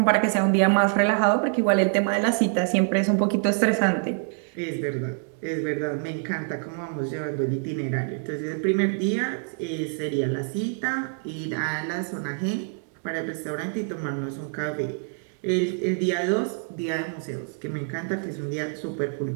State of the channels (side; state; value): left; silent; 55 dB below the other